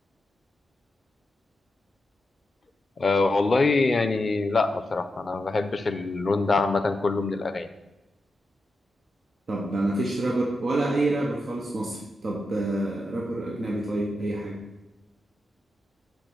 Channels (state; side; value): normal; both; correlation 0.88